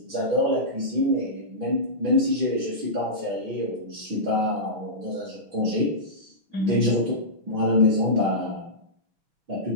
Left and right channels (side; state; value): left; late; 6.1 ms